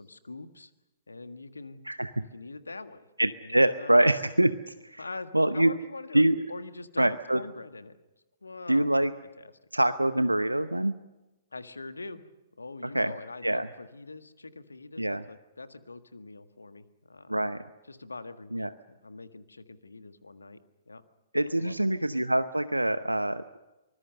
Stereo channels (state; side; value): inverted; both; correlation -0.98